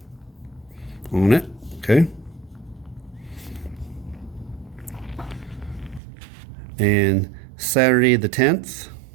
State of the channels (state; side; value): drops out; left; at 6.0 s